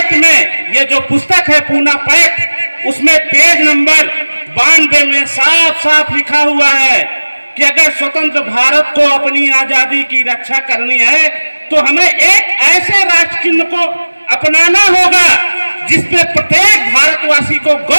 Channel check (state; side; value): inverted; both; correlation -1.00